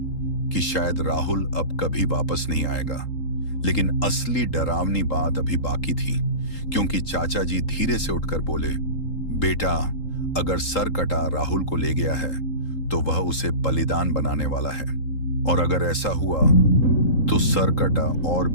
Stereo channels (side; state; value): right; late; 3.8 ms